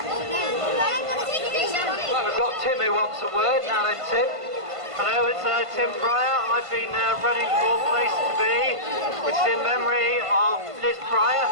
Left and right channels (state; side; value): late; left; 1.5 ms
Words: Well, we've got Tim who wants a word, now then Tim. Hello, it's Tim Pryor. I've been running for Place to Be, which is in memory of Liz Pryor,